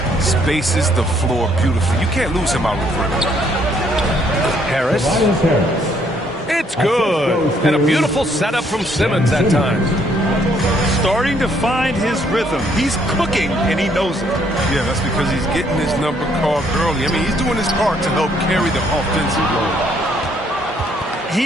Spaces the floor beautifully. You can't lose him out of the perimeter. Harris. It's good. And a beautiful setup from Simmons that time. Starting to find his rhythm. He's cooking, and he knows it. Yeah, that's because he's getting his number called early. I mean, he's doing his part to help carry the offensive load.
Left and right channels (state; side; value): normal; both; correlation 0.67